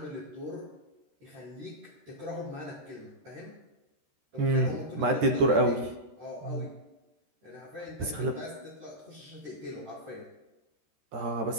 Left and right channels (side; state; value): left; late; 13 ms